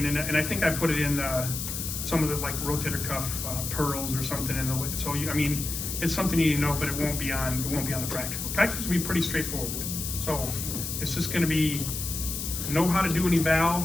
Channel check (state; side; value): noise; left; hiss, 5 dB below the sound